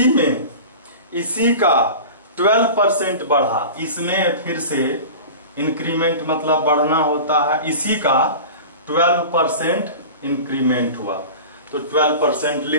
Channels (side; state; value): both; inverted; correlation -0.35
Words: इसी का 12% बढ़ा, इसमें फिर से इंक्रीमेंट मतलब बढ़ना होता है, इसी का 12% इंक्रीमेंट हुआ तो 12%